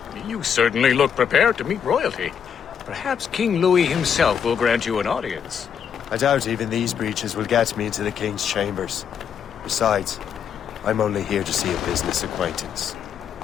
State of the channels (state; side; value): quieter; right; 7.9 dB